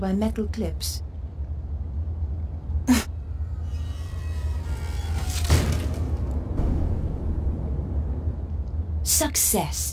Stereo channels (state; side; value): identical; both; correlation 1.00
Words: by metal clips.